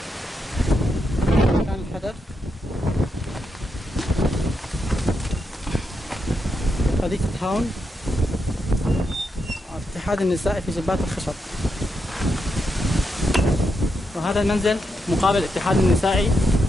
مكان الحدث. حديقة هاون الاتحاد النسائي في جبات الخشب. وهذا المنزل مقابل الاتحاد النسائي،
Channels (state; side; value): normal; both; correlation 0.83